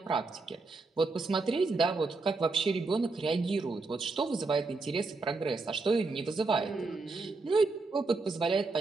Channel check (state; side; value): quieter; left; 3.7 dB